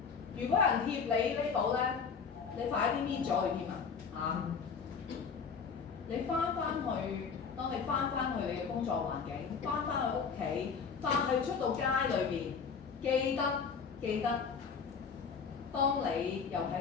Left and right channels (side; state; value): right; quieter; 5.9 dB